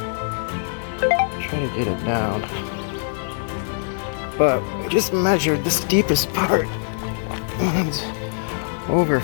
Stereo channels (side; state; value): right; silent; 64 dB below the other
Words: try to get it down. But we just measured the steepest part, and it's over